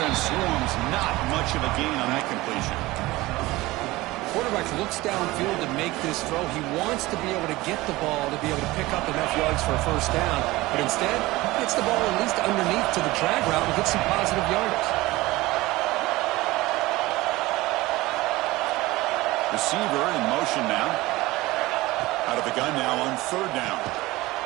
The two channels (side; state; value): left; quieter; 19.6 dB